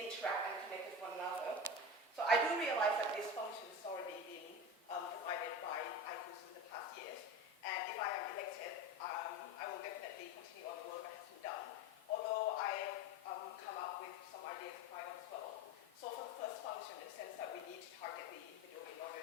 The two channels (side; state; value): both; normal; correlation 0.27